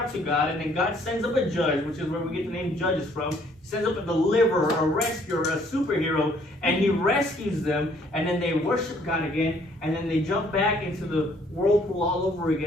to God, and then God sends up a judge, which is where we get the name Judges from. He sends up a deliverer, a rescuer, a superhero, and he rescues them, and then they worship God again, and then they jump back into the whirlpool all over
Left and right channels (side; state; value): both; normal; correlation 0.63